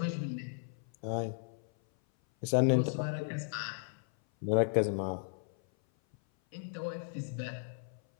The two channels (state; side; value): silent; right; 54 dB below the other